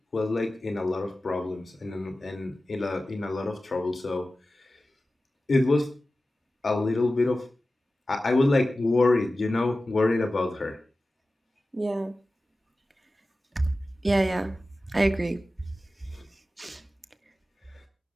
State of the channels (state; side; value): normal; both; correlation 0.95